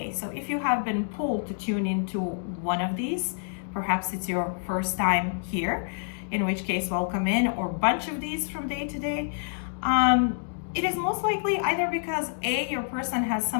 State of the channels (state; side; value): silent; right; digital silence